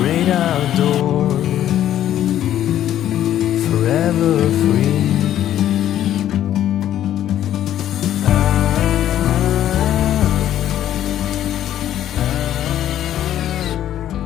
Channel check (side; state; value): right; quieter; 11.6 dB